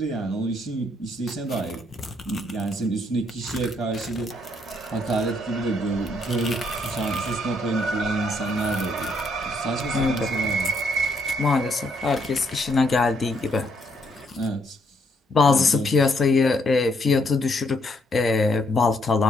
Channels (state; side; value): normal; both; correlation 0.71